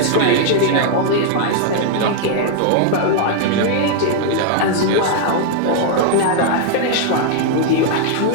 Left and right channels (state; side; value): different; both; correlation 0.00